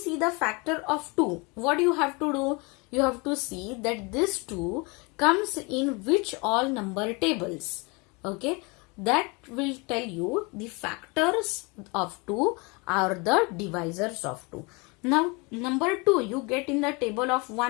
the factor of 2, what you have to do? You have to see that this 2 comes in which all number tables. Okay, that will tell you the factors of 2 are the divisors of 2. Now number 2 you get in the table of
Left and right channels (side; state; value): right; quieter; 28.7 dB